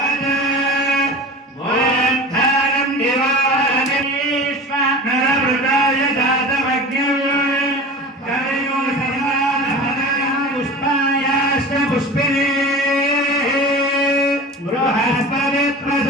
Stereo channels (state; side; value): normal; both; correlation 0.35